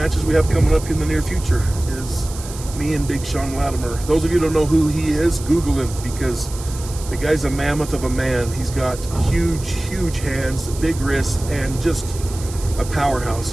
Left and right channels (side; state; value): right; noise; hiss, 14 dB below the sound